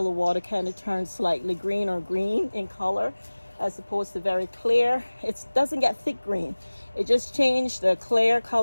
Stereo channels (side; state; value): both; inverted; correlation -1.00